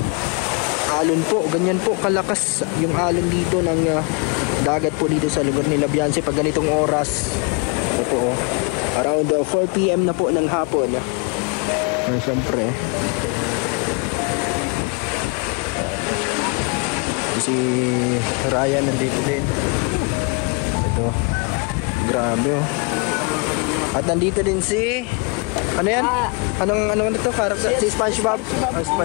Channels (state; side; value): quieter; right; 31.6 dB